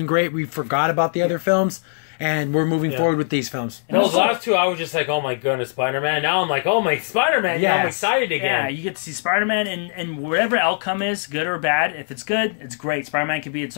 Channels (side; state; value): right; silent; digital silence